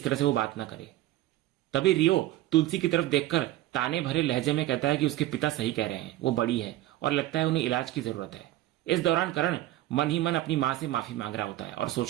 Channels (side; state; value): left; quieter; 15.2 dB